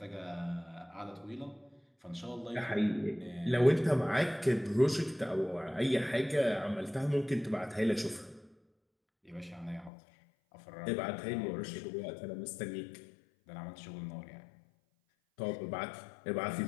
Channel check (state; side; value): drops out; right; at 9.9 s